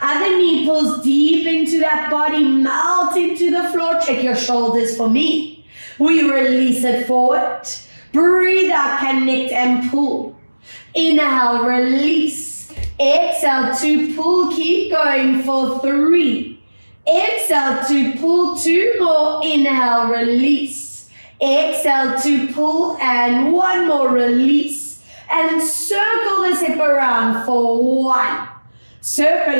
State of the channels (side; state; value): both; inverted; correlation -1.00